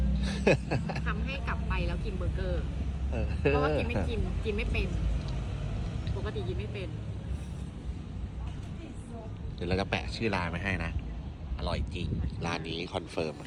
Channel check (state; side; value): identical; both; correlation 1.00